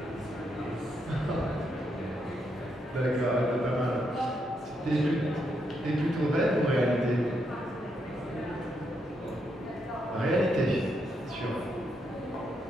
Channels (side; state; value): both; normal; correlation 0.79